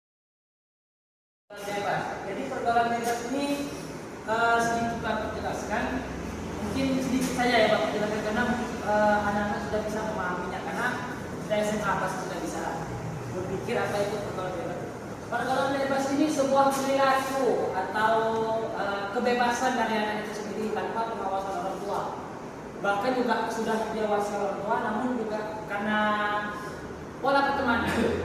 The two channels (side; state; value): both; identical; correlation 1.00